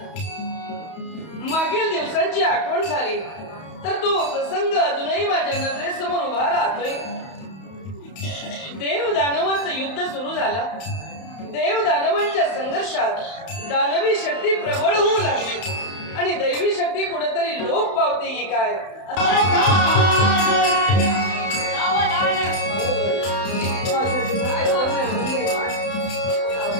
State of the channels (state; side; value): late; right; 31 ms